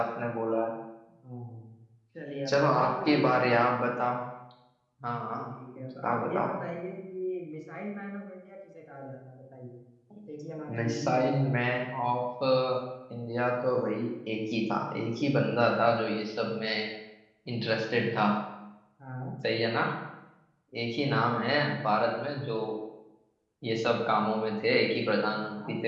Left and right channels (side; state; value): both; identical; correlation 1.00